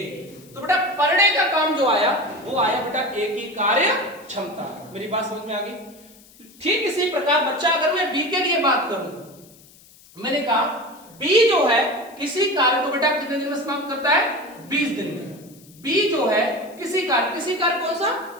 तो बेटा पर डे का काम जो आया वो आया बेटा एक ही कार्य क्षमता। मेरी बात समझ में आ गई? ठीक इसी प्रकार बच्चा अगर मैं बी के लिए बात करूं, मैंने कहा बी जो है किसी कार्य को बेटा कितने दिन में समाप्त करता है? 20 दिन में। बी जो है किसी कार्य कौन सा?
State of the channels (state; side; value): noise; left; hiss, 25 dB below the sound